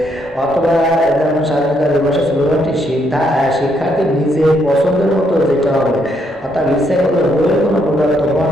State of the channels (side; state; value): both; normal; correlation 0.74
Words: অথবা যেমন স্বাধীনতা দিবসের স্লোগানটি শিক্ষার্থীর নিজের পছন্দের মতো যেটা হবে, অর্থাৎ ইচ্ছে করলে বইয়ের কোনো প্রদত্ত